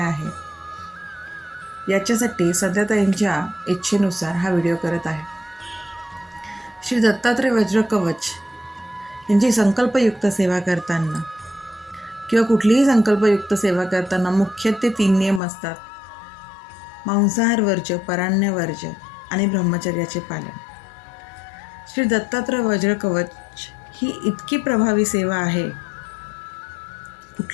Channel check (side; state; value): right; drops out; at 15.4 s